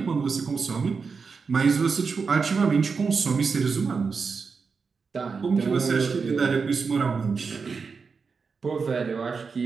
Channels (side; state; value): left; quieter; 5.1 dB